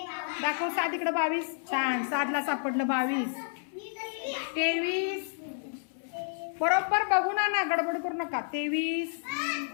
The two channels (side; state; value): right; silent; 56 dB below the other